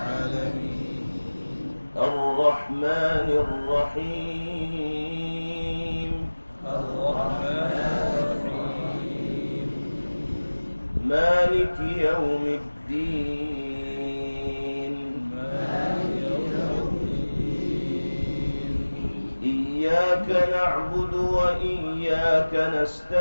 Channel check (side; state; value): both; inverted; correlation -1.00